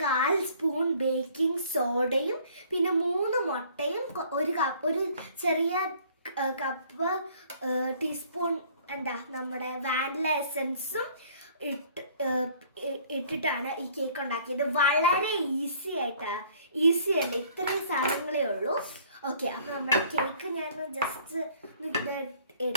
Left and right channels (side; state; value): both; inverted; correlation -0.56